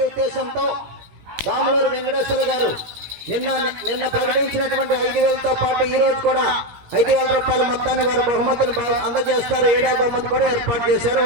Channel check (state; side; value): late; left; 17 ms